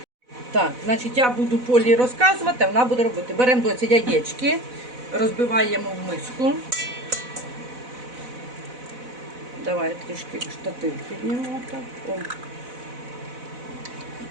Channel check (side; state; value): left; late; 4.0 ms